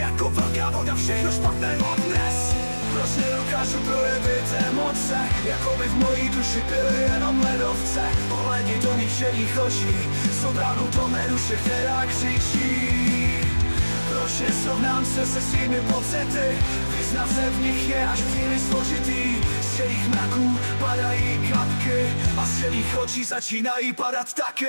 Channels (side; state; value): both; inverted; correlation -1.00